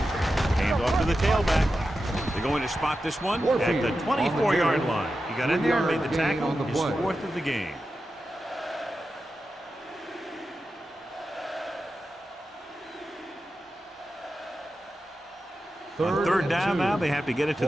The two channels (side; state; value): both; normal; correlation 0.91